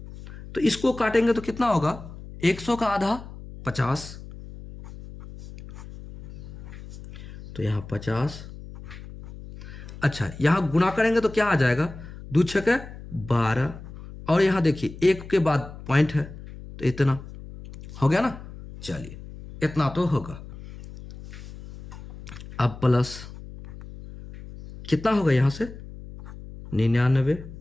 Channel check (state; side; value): noise; left; hum, 14 dB below the sound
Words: तो इसको काटेंगे तो कितना होगा? 100 का आधा 50, तो यहां 50। अच्छा यहां गुणा करेंगे तो क्या आ जाएगा? 2 छके 12, और यहां देखिए 1 के बाद पॉइंट है तो इतना हो गया ना। चलिए इतना तो होगा। अब प्लस कितना होगा यहां से? 99।